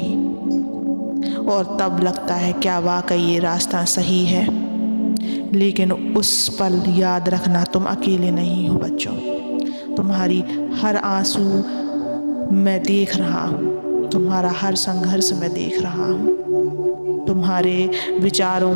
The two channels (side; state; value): both; inverted; correlation -1.00